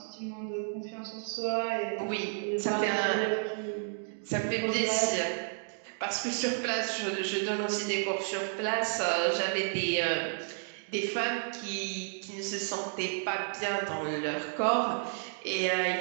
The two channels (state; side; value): silent; left; 57 dB below the other